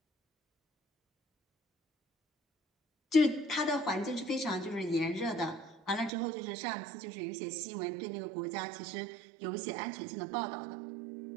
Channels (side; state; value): left; drops out; at 6.1 s